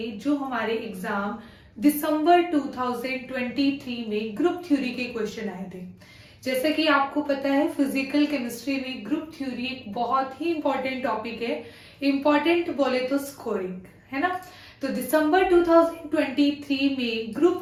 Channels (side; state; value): both; identical; correlation 1.00